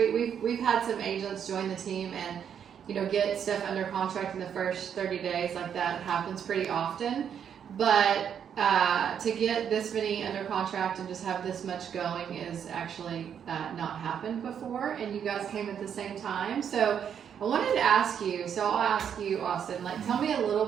we've had some agents join the team and, you know, get stuff under contract in the first 30 days. Like, that happens pretty often. But to get this many under contract and just have this much going is actually not happened before, and you guys came at the same time. So I wanted to ask you, so I'll ask you, Austin, like, tell me a little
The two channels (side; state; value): left; quieter; 8.3 dB